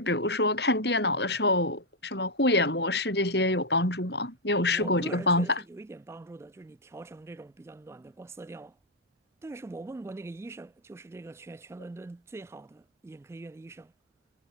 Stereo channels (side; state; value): both; normal; correlation -0.02